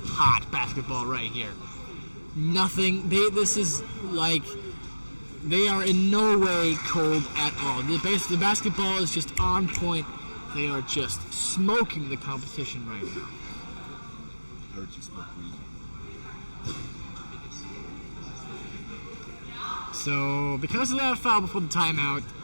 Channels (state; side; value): inverted; both; correlation -1.00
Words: basketball right here. This is like, they are in no way cold at all. The basketball is just on point. They are just smoking the competition right now. I heard you smoke weed. So, because of that foul before the timeout,